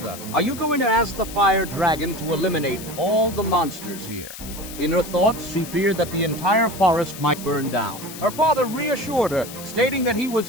"Are you going to ask the fire dragon to eliminate all the monsters here?" In her thoughts, she feared that the entire forest might burn down. Her father reassured her, stating that he was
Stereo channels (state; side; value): noise; left; hiss, 13 dB below the sound